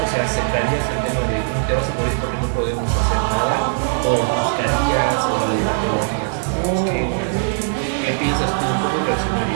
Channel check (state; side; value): silent; left; digital silence